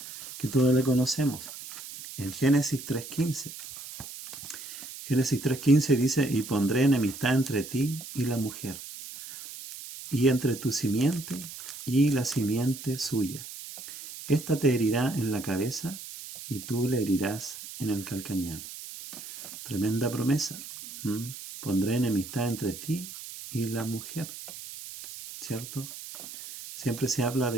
que todos le conocemos. En Génesis 3.15. Génesis 3.15 dice, y pondré enemistad entre ti y la mujer, y entre tu simiente y la simiente suya. Esta te herirá en la cabeza, y tú le herirás en el calcañar. Tremenda promesa. Pondré enemistad entre ti y la mujer. ¿Cierto? Siempre se habla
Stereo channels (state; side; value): noise; right; hiss, 12 dB below the sound